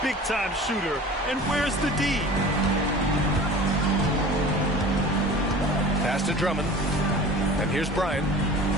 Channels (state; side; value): normal; both; correlation 0.40